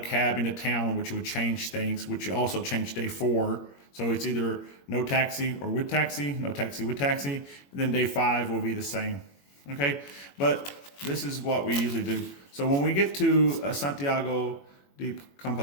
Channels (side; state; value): right; late; 21 ms